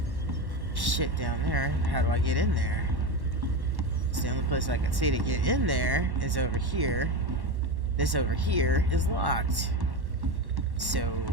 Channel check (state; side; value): late; left; 1.1 ms